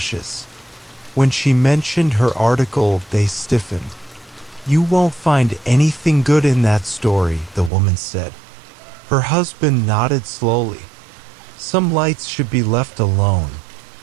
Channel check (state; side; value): drops out; left; at 7.7 s